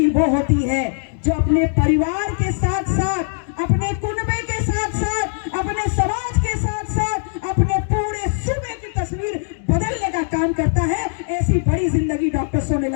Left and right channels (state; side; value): silent; right; digital silence